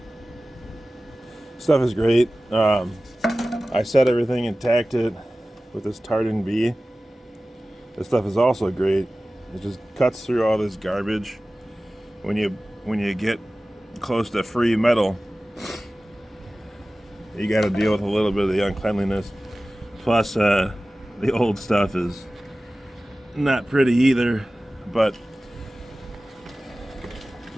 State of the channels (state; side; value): normal; both; correlation 0.96